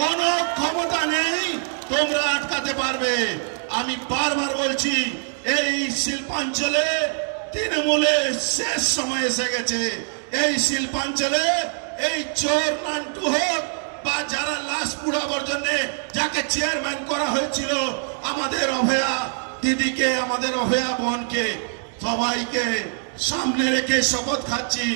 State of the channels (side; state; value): left; silent; digital silence